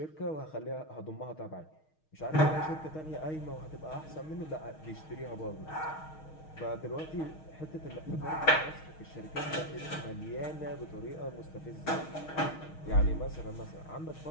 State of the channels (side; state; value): right; late; 6.4 ms